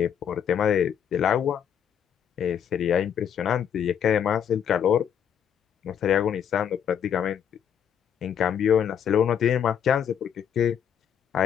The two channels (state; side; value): quieter; right; 8.6 dB